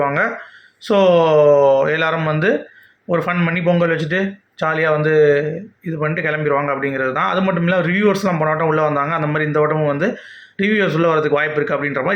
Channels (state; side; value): identical; both; correlation 1.00